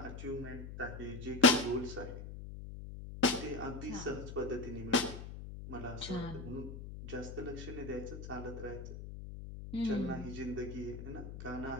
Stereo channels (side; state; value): left; noise; hum, 9 dB below the sound